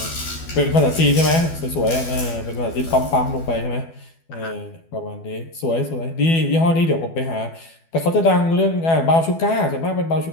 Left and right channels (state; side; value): late; right; 12 ms